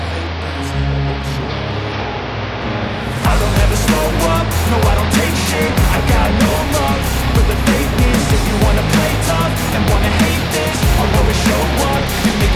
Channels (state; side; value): identical; both; correlation 1.00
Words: don't ever slow up, no I don't take shit. I got no love for the fakeness. If you wanna play tough and wanna hate this, I'll always show up and make